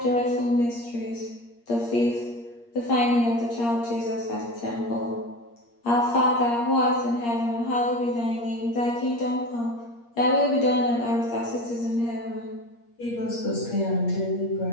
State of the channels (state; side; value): late; right; 8.5 ms